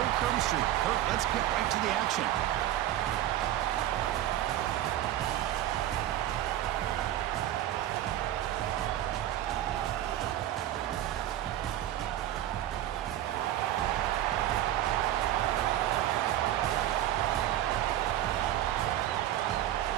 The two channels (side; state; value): left; quieter; 12.7 dB